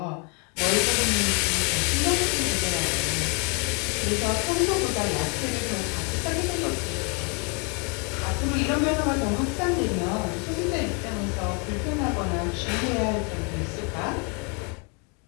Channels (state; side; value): quieter; right; 34.6 dB